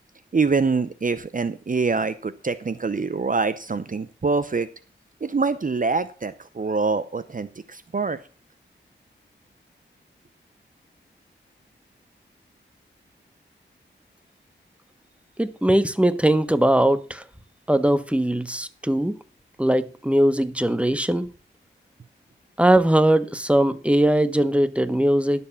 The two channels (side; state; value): both; normal; correlation 0.81